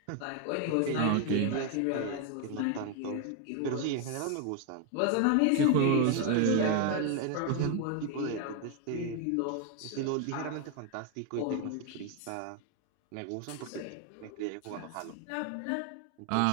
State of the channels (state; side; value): different; both; correlation 0.01